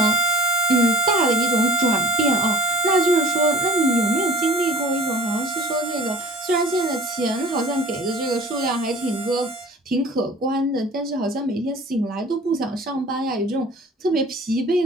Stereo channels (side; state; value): both; normal; correlation 0.44